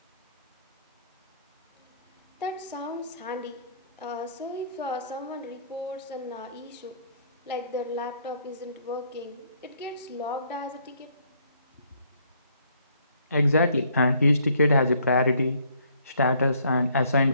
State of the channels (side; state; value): both; inverted; correlation -0.65